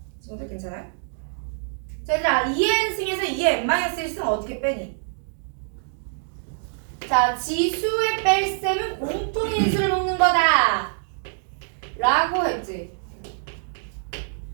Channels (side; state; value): left; silent; digital silence